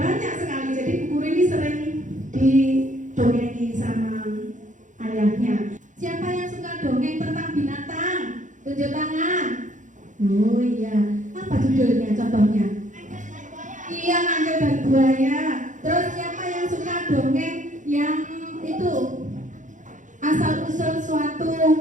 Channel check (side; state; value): left; late; 0.36 ms